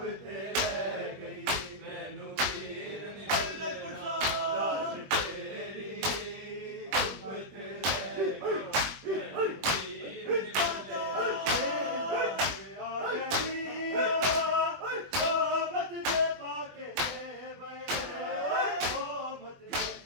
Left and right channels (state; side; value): late; left; 21 ms